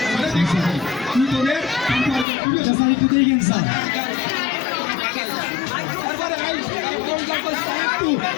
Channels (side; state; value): right; drops out; at 2.2 s